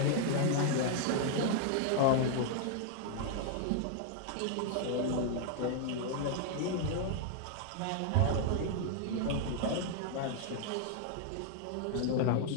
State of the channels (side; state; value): both; different; correlation 0.00